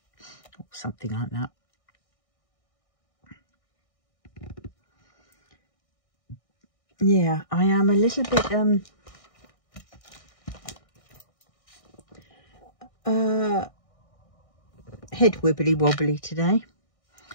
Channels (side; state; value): right; late; 1.6 ms